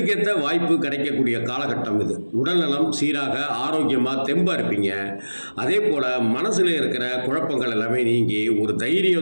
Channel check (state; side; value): inverted; both; correlation -1.00